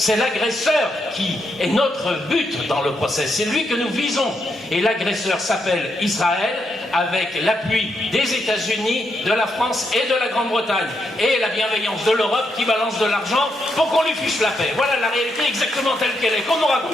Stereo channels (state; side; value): normal; both; correlation 0.81